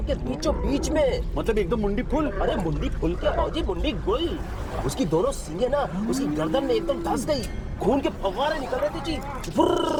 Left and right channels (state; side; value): identical; both; correlation 1.00